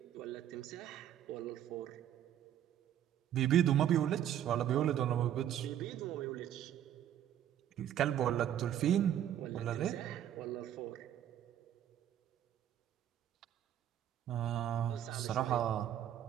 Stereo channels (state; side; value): quieter; left; 10.8 dB